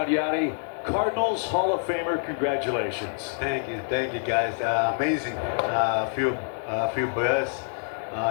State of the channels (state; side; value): silent; right; 61 dB below the other